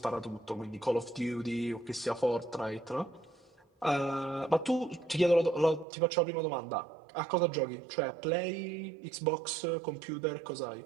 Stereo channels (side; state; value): left; drops out; at 5.9 s